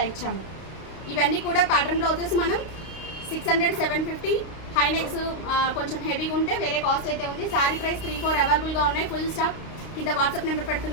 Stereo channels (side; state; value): right; late; 32 ms